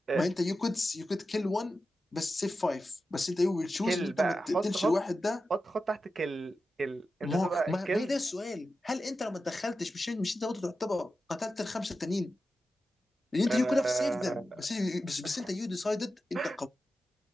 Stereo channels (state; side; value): normal; both; correlation 0.91